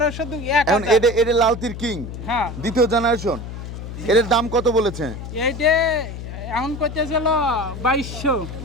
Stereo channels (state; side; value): noise; left; hum, 9 dB below the sound